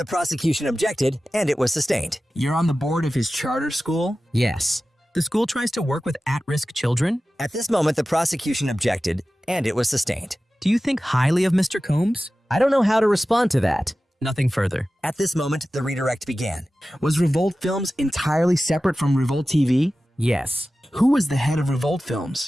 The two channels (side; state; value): both; normal; correlation 0.95